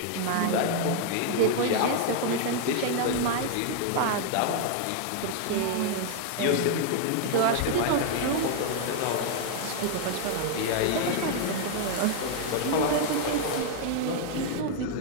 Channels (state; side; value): different; both; correlation 0.00